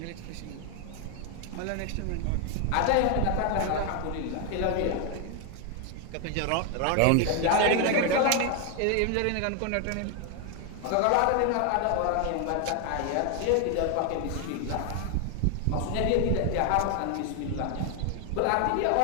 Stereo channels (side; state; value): both; different; correlation 0.00